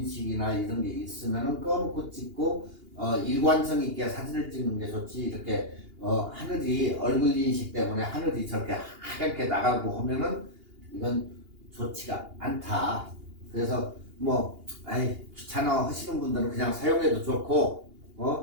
이런 게 있으면은 꺼놓고 찍고 일관성 있게 사진을 찍는 게 좋지. 이렇게 하늘이 얼굴 인식 때문에 하늘이 저렇게 하얗게 나가고 하면은 이건 좋지가 않다. 그래서 뭐 귀찮아 하시는 분들은 그냥 사용해도 좋고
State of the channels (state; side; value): late; left; 2.8 ms